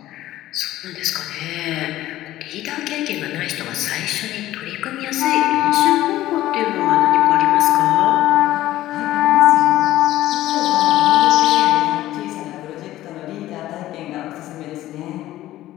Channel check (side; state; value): right; quieter; 14.9 dB